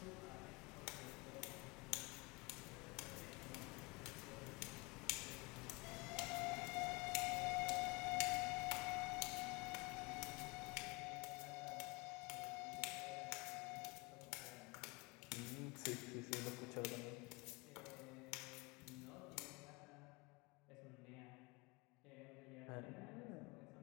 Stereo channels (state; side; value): quieter; right; 27.0 dB